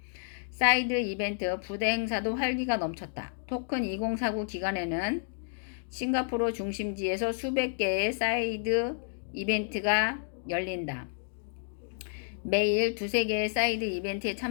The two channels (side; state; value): right; silent; digital silence